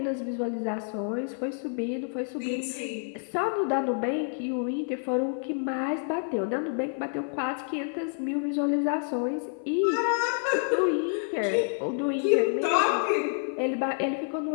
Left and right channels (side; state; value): right; silent; 55 dB below the other